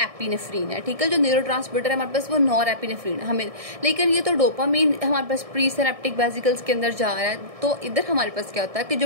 है, ठीक है। जो न्यूरोट्रांसमीटर है हमारे पास वो नॉरएपिनेफ्रिन हमें, लेकिन ये तो डोपामीन हमारे पास प्री सिनेप्टिक वेसिकल्स के अंदर जा रहा है। तो इधर हमारे पास क्या होता है कि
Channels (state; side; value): late; left; 1.6 ms